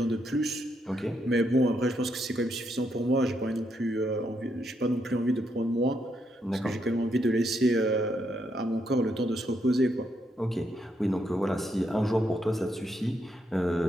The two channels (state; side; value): normal; both; correlation 0.78